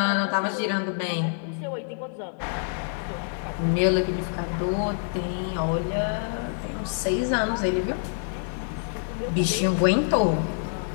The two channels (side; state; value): right; silent; digital silence